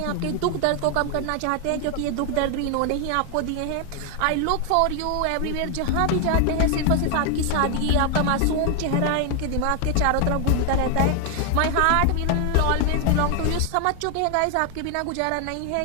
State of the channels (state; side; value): different; both; correlation 0.00